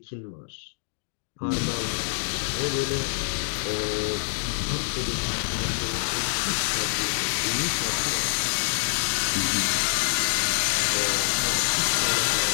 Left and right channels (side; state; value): right; silent; digital silence